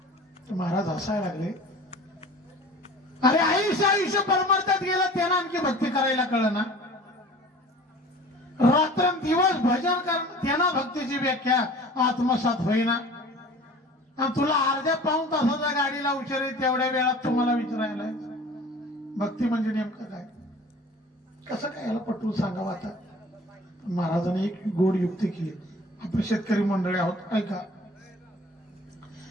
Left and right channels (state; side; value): normal; both; correlation 0.43